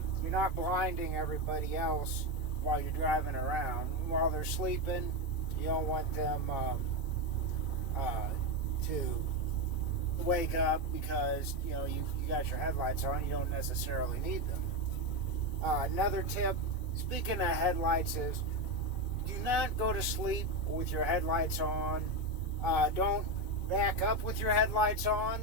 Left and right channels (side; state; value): right; late; 2.4 ms